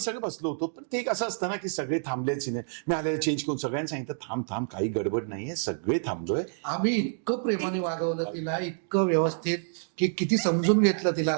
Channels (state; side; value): silent; left; digital silence